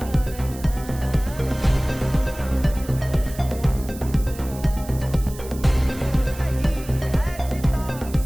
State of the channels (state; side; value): noise; right; hiss, 17 dB below the sound